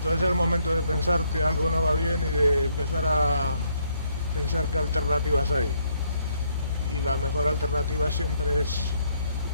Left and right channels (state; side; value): inverted; both; correlation -0.71